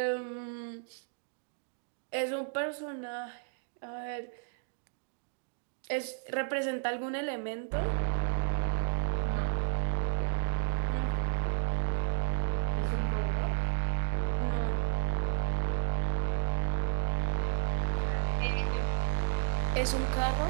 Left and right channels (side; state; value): left; silent; digital silence